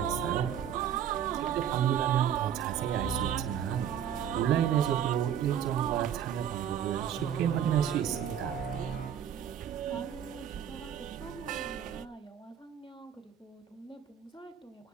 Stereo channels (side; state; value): left; quieter; 9.3 dB